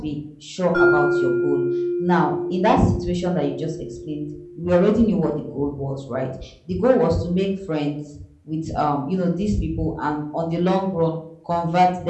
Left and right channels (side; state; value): both; identical; correlation 1.00